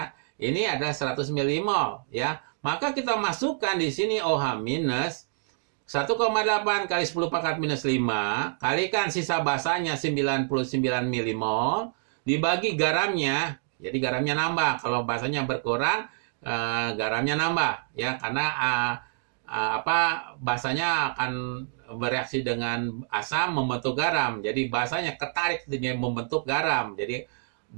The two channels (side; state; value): left; silent; digital silence